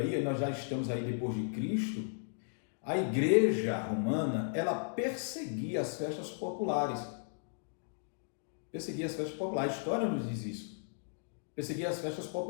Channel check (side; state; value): right; silent; digital silence